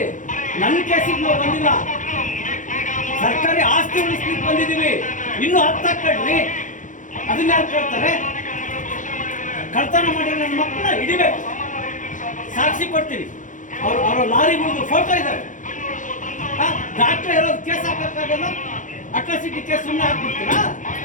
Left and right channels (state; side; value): late; right; 0.37 ms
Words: ನನ್ನ ಕೇಸಿಗೆ ನಾವು ಬಂದಿಲ್ಲ. ಸರ್ಕಾರಿ ಆಸ್ತಿ ಉಳಿಸ್ಲಿಕ್ಕೆ ಬಂದಿದ್ದೀವಿ, ಇನ್ನೂ 10 ಹಾಕ್ಕೊಳ್ರಿ. ಅದನ್ನ ಯಾರು ಕೇಳ್ತಾರೆ? ಕಳ್ತನ ಮಾಡಿ ನನ್ನ ಮಕ್ಕಳನ್ನ ಹಿಡಿಬೇಕು, ಸಾಕ್ಷಿ ಕೊಡ್ತೀವಿ. ಅವ್ರ ಲಾರಿ ಮುಗಿದು ಫೋಟೋ ಇದ್ದಾರೆ. ಡಾಕ್ಟರ್ ಇರೋದು ಕೇಸ್ ಹಾಕಕ್ಕಾಗಲ್ಲ, ಅಟ್ರಾಸಿಟಿ ಕೇಸ್ ಸುಮ್ಮನೆ ಹಾಕ್ಬಿಡ್ತೀರಾ?